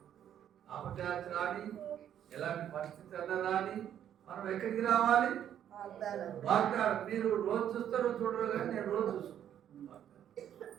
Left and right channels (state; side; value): quieter; left; 10.1 dB